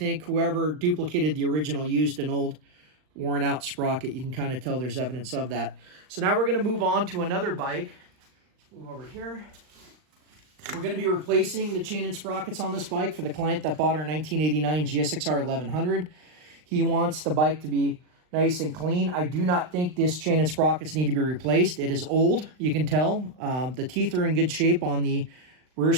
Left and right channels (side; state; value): left; late; 39 ms